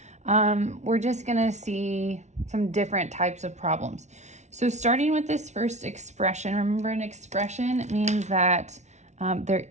We're just gonna see some different types of problems. So starting with this first expression, remember an expression means that there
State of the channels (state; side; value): late; left; 0.33 ms